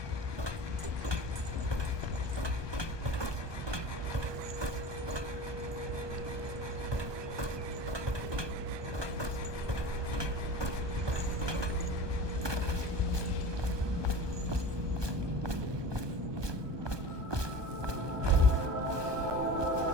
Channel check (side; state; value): left; late; 1.2 ms